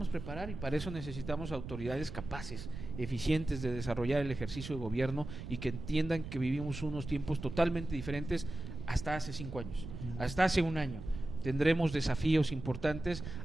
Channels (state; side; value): noise; right; rumble, 9 dB below the sound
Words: preparar y para eso necesitamos autoridades capaces, eficientes de desarrollar el ejercicio de gobierno y que entiendan que vivimos unos tiempos totalmente diferentes hasta hace 5 años, hasta hace un año. Tendremos desafíos importantes,